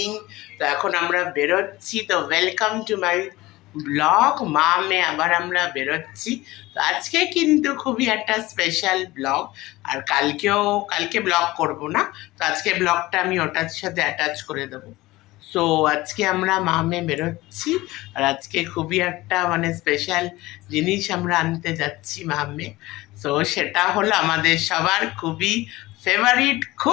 তো এখন আমরা বেরোচ্ছি। তো ওয়েলকাম টু মাই ব্লগ। মেয়ে আবার আমরা বেরোচ্ছি। তো আজকে কিন্তু খুবই একটা স্পেশাল ব্লগ। আর কালকে ব্লগ করব না। তো আজকে ব্লগটা আমি ওটার সাথে অ্যাটাচ করে দেবো। সো আজকে আমরা মেয়ে বেরোচ্ছি। আর আজকে খুবই একটা মানে স্পেশাল জিনিস আমরা আনতে যাচ্ছি মেয়ে। সো সেটা হলো আমাদের সবার খুবই ফেভারিট,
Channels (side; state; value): right; quieter; 19.1 dB